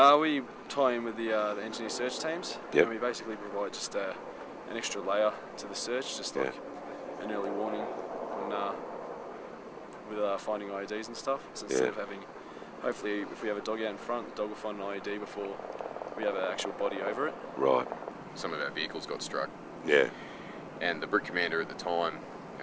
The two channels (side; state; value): both; identical; correlation 1.00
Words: We tie in with the engineer search teams, and we basically provide just an extra layer to the search, just like an early warning on, with finding IEDs and stuff. So instead of having, hopefully if we have a dog out in front, the dog will find an IED before we have an actual body over it. Right. Some of our vehicles got struck. Yeah. And the Brit commander at the time,